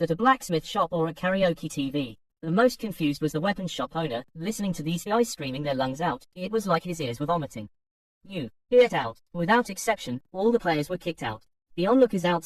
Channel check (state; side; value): identical; both; correlation 1.00